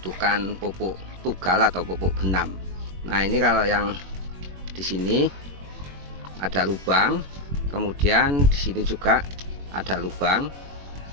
pupuk tugal atau pupuk benam. Nah, ini kalau yang di sini ada lubang, kemudian di sini juga ada lubang,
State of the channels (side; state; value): left; late; 21 ms